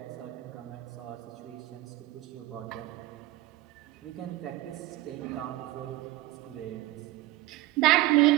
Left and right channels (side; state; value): left; quieter; 17.5 dB